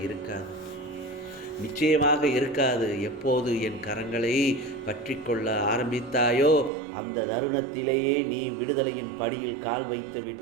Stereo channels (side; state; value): left; drops out; at 6.7 s